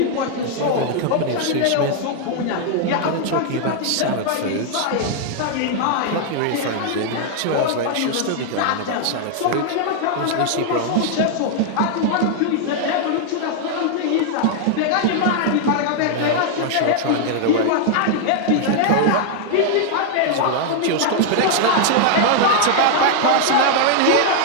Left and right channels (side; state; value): both; different; correlation 0.00